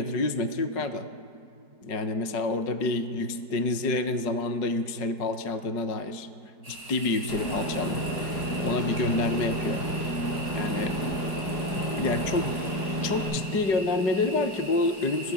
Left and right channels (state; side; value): late; right; 4.9 ms